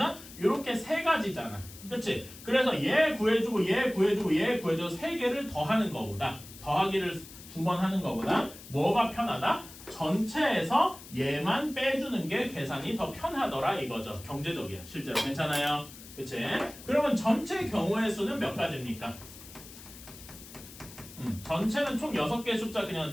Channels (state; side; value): noise; left; hiss, 17 dB below the sound